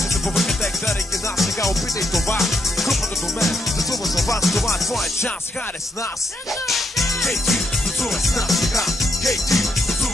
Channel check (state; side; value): normal; both; correlation 0.78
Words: се побъркате, гледайки нас сега, опитай това. Групата до мен, танцува за вас, това е твоя шанс, хайде с нас. Хей, ти, танцувай с нас сега. Хей, ти,